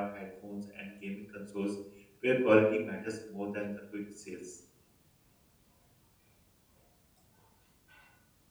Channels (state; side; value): identical; both; correlation 1.00